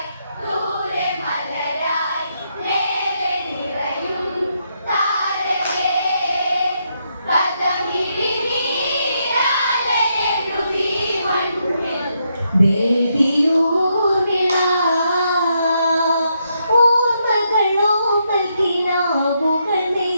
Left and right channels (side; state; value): both; inverted; correlation -0.79